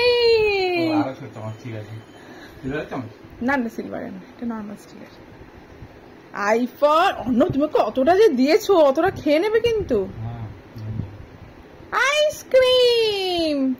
না না, সিলভার না, এটা নর্মাল স্টিলের। আইফার অন্য, তুমি কতটা যে দিয়েছো, অতটা খেয়ে নেবে কিন্তু। আইসক্রিম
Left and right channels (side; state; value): both; identical; correlation 1.00